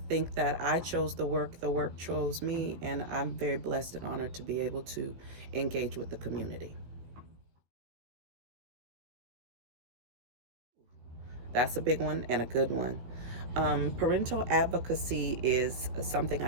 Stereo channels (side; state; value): left; late; 17 ms